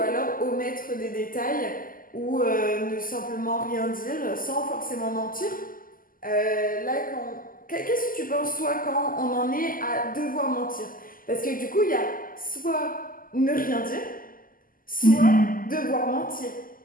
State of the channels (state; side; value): late; right; 0.41 ms